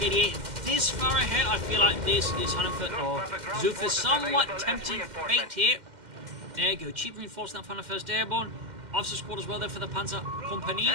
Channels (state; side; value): late; left; 2.1 ms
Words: 88 this far ahead. I feel like this is 100 or Xufe somewhat tempting fate here. There you go. Cheap reinforcement from 101st Airborne. Officers' quarters well there for the Panzer Company.